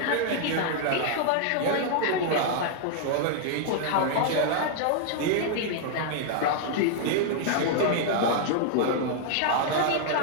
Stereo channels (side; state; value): both; different; correlation -0.01